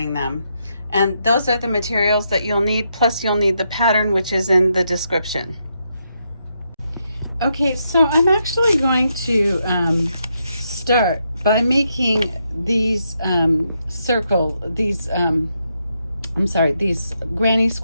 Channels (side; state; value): both; inverted; correlation -0.80